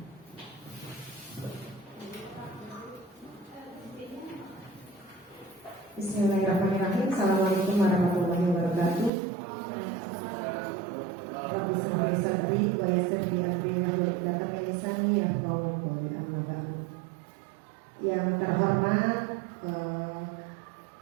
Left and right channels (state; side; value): drops out; left; at 9.1 s